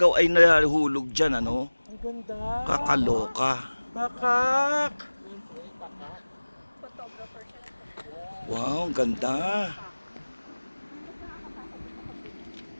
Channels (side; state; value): both; inverted; correlation -1.00